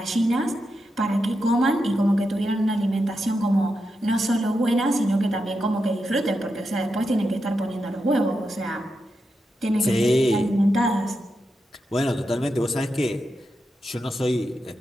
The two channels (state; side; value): normal; both; correlation 0.87